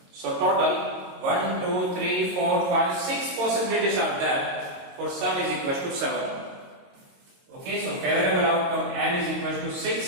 So total 1, 2, 3, 4, 5, 6 possibilities are there for sum is equal to 7. Okay, so favorable outcome n is equal to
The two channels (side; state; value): left; late; 22 ms